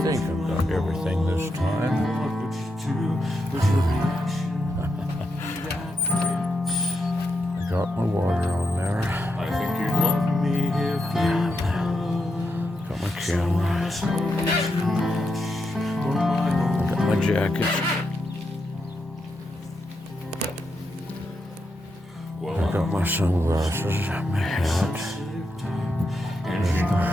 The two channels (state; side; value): normal; both; correlation 0.84